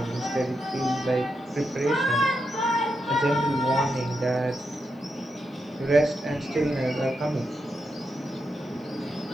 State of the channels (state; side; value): normal; both; correlation 0.85